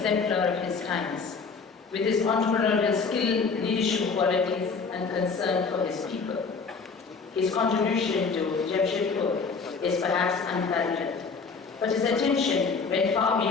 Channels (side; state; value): right; quieter; 4.9 dB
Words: of his times, with his entrepreneurial skill, leadership qualities, and concern for his people. His contribution to Jamshedpur is perhaps unparalleled, but his attention went far